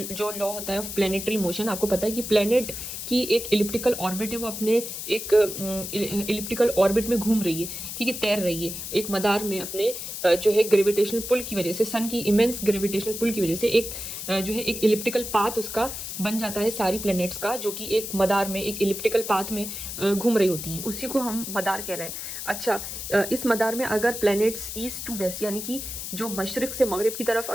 लॉ होता है ऑफ प्लेनेटरी मोशन। आपको पता है कि प्लेनेट की एक इलिप्टिकल ऑर्बिट है, वो अपने एक इलिप्टिकल ऑर्बिट में घूम रही है, ठीक है, तैर रही है एक मदार में अपने जो है ग्रेविटेशनल पुल की वजह से, सन की इमेंस ग्रेविटेशनल पुल की वजह से एक जो है एक इलिप्टिकल पाथ उसका बन जाता है सारी प्लैनेट्स का, जो कि एक मदार में एक इलिप्टिकल पाथ में घूम रही होती हैं। उसी को हम मदार कह रहे हैं। अच्छा, इस मदार में अगर प्लैनेट्स ईस्ट टू वेस्ट यानी कि जो मशरिक से मगरिब की तरफ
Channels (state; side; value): noise; left; hiss, 7 dB below the sound